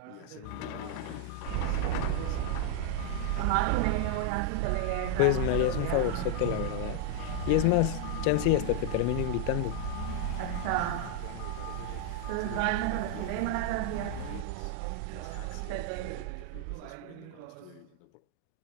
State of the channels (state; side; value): different; both; correlation 0.00